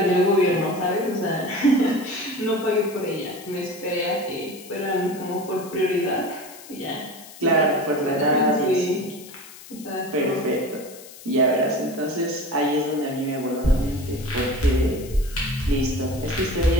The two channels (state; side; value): noise; left; hiss, 18 dB below the sound